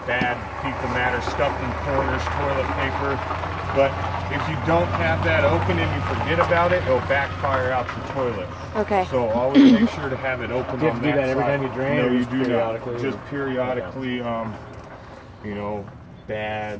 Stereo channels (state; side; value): identical; both; correlation 1.00